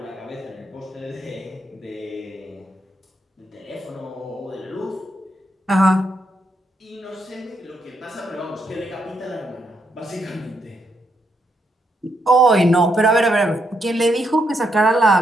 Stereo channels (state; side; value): normal; both; correlation 0.78